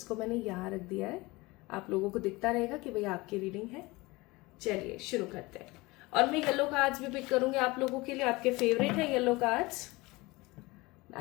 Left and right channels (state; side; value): quieter; right; 22.5 dB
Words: मैंने यहाँ रख दिया है, आप लोगों को दिखता रहेगा कि भाई आपकी रीडिंग है। चलिए शुरू करते हैं। और मैं येलो कार्ड्स भी पिक करूंगी आप लोगों के लिए, आपके फेवरेट है yellow cards.